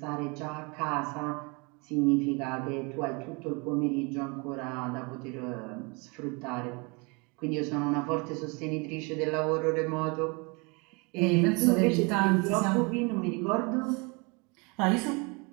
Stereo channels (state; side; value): quieter; left; 29.8 dB